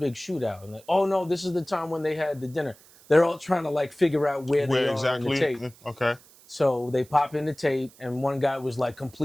shootout. And like, oh no, this is the time when they had the dinner. They're all trying to like figure out where they are in the tape. Okay. So they pop in the tape, and one guy was like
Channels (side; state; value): right; noise; hiss, 25 dB below the sound